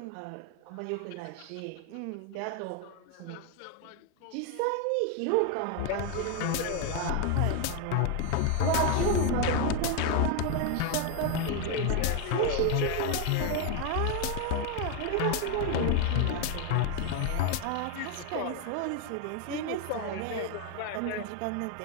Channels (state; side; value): different; both; correlation 0.01